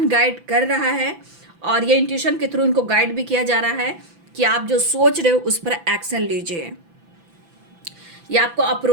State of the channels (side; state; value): left; late; 5.9 ms